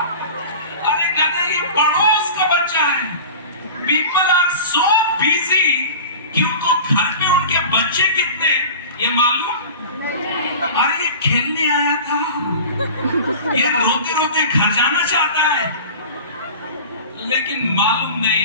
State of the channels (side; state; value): both; inverted; correlation -0.36